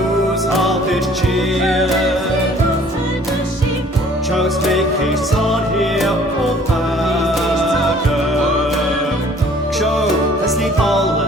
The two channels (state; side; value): normal; both; correlation 0.55